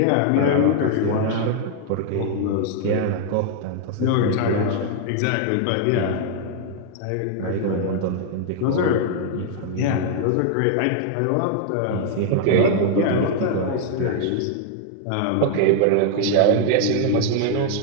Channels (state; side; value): different; both; correlation 0.00